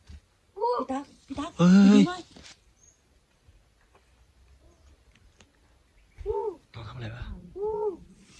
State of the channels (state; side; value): identical; both; correlation 1.00